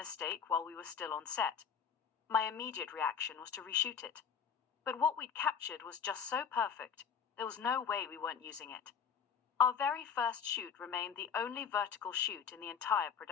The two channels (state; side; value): quieter; right; 7.1 dB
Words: while we were still on set. My immediate reaction was to reshoot it. But what we'd captured was just so perfect, there was no way we weren't using it. Our very first shoot remained the only vertical shoot in the entire